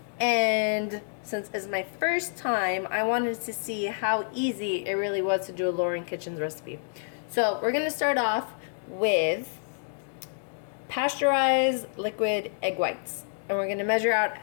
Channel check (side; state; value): right; silent; digital silence